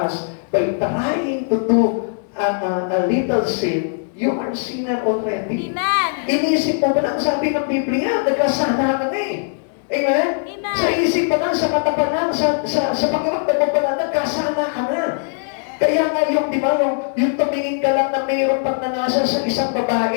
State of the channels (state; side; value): silent; right; 62 dB below the other